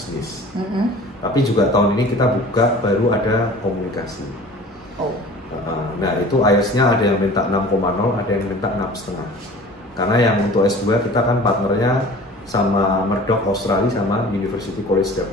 Tapi juga tahun ini kita buka baru ada komunikasi. Nah itu IELTS-nya ada yang minta 6,0, ada yang minta 6,5. Karena yang untuk S2 kita kan partnernya sama Murdoch Australia sama University College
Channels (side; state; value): both; normal; correlation 0.44